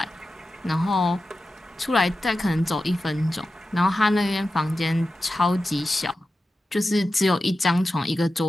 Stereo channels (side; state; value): both; normal; correlation 0.92